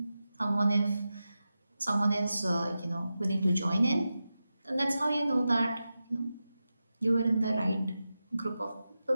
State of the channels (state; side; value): inverted; both; correlation -0.92